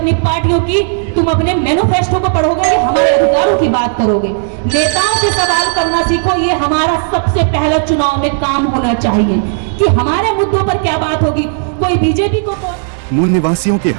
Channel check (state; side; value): silent; left; digital silence